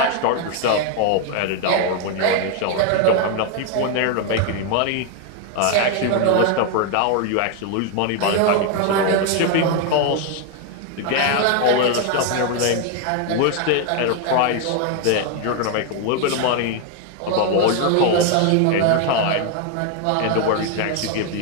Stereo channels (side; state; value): both; different; correlation 0.01